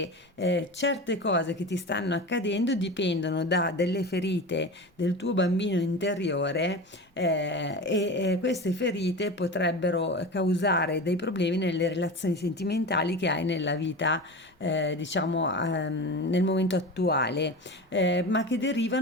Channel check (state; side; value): normal; both; correlation 0.29